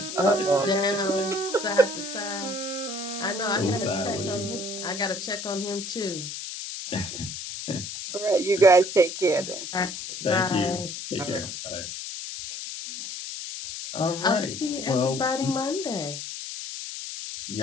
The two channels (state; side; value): noise; left; hiss, 7 dB below the sound